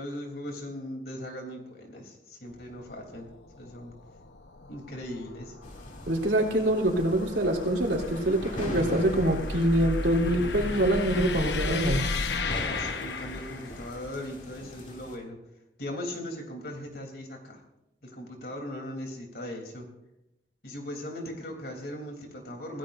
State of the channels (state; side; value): normal; both; correlation 0.48